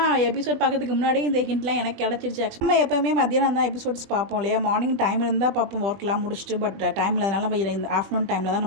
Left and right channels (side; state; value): left; late; 20 ms